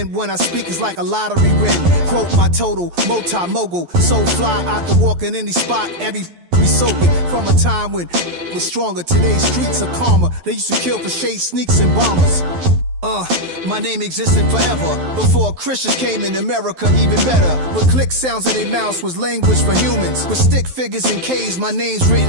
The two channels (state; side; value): late; left; 12 ms